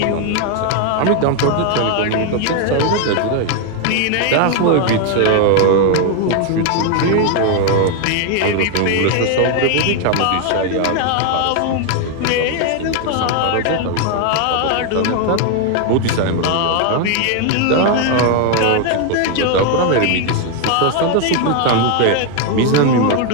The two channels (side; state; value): both; different; correlation 0.01